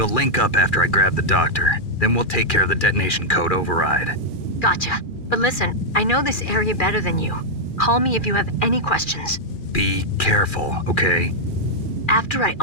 link up after I grab the doctor. Then we'll take care of the detonation code override. Gotcha. But listen, I know this area better than you. Call me if you have any questions. Be careful, okay? After I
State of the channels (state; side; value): late; right; 2.4 ms